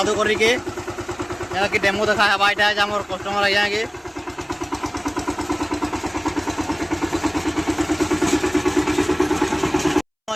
करी के जेना कि डेमो देखा है बाइटा है हमर कस्टमर आया के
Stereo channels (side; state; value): both; identical; correlation 1.00